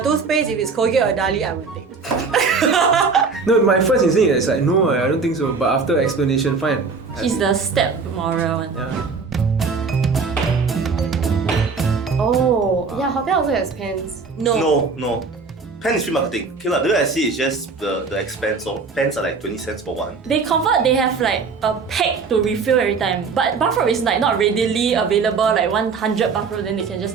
toothpaste, if it's Colgate or Dali, I would take. No, my first instinct is like, no, I don't think so. But after explanation, fine. It's the step moral one. Yeah. Oh, yeah, hotel also has pens. No. Pen is free marketing. Okay, the way I see it is just the expense. So pens are like 20 cents for one. They they have like a pack to refill every time. But bathrobe is like not readily available, like 100 bathrobe, then they can just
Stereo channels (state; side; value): quieter; left; 4.8 dB